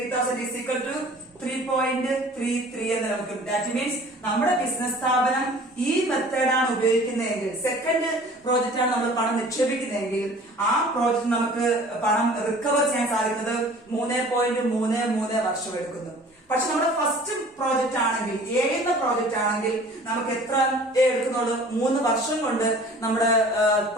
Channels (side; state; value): both; normal; correlation 0.47